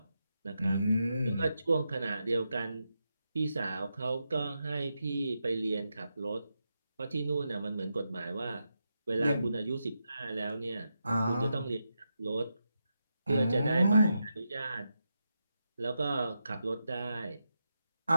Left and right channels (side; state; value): both; inverted; correlation -0.87